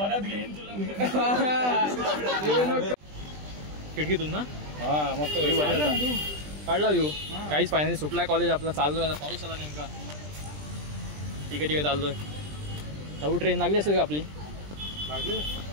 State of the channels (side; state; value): left; late; 20 ms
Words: घेईन खिडकीतून ना हा मस्त काढला व्ह्यू. काहीच फायनली सुटलाय कॉलेज आपला. चाललोय आता. पाऊस आला नेमका. ठीक आहे चाललोय. नऊ ट्रेन लागली असेल का आपली? लागली